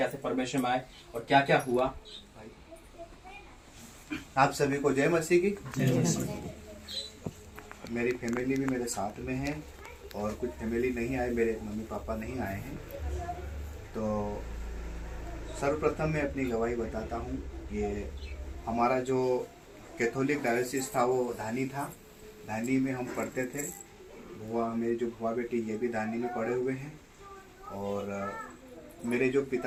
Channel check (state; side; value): identical; both; correlation 1.00